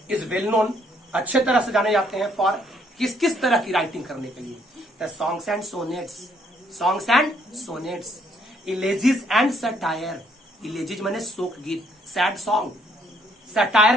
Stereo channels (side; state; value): both; normal; correlation 0.68